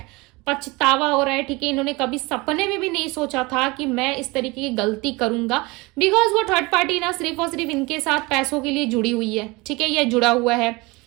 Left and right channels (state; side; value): quieter; left; 24.1 dB